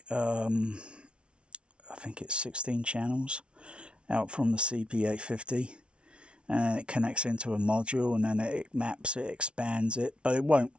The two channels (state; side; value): late; left; 0.058 ms